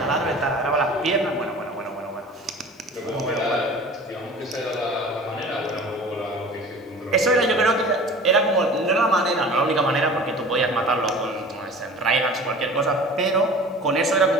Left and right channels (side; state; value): both; normal; correlation 0.41